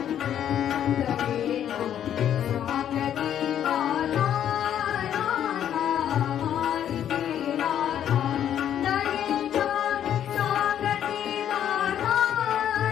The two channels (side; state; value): right; quieter; 10.1 dB